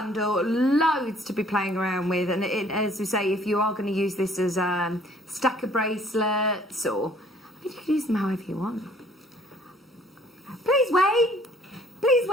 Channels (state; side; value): normal; both; correlation 0.58